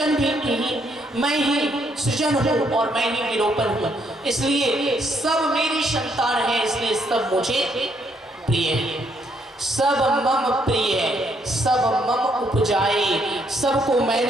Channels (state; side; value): normal; both; correlation 0.72